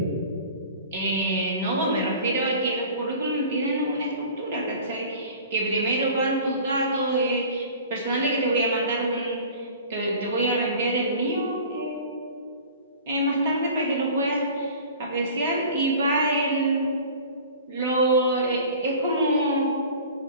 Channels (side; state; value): both; inverted; correlation -0.43